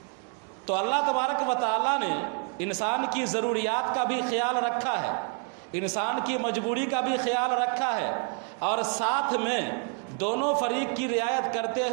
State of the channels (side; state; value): left; quieter; 38.7 dB